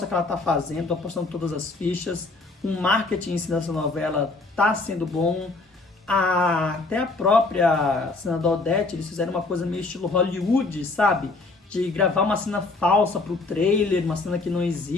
que ela está fazendo, apostando todas as fichas. O marketing em si dessa novela está sendo bom. Até a própria senadora Odete, eles fizeram uma coisa meio estilo Hollywood, sabe? De gravar uma cena falsa pro trailer, uma cena que não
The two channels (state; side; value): quieter; right; 3.4 dB